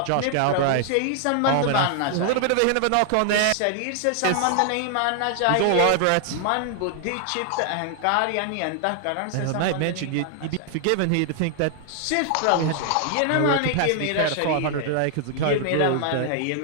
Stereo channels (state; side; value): different; both; correlation 0.00